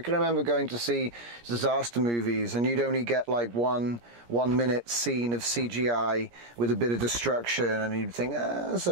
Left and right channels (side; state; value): left; late; 17 ms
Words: remember going to see disaster movies and you'd only get like one minute scene of CGI with a bit of destruction and you'd think, that's